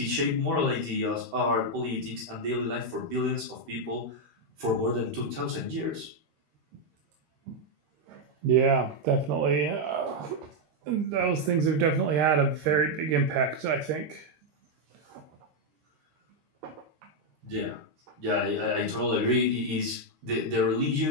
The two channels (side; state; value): left; late; 13 ms